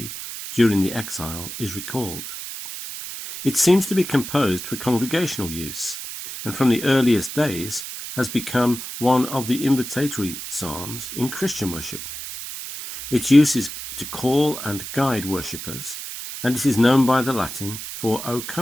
during the exile is recalled. It seems to be composed for congregational use, and from the earliest days has become one of the invitatory psalms in Christian worship. Its use is to call and guide worshippers, and it is known by the Latin for O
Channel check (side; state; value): right; noise; hiss, 9 dB below the sound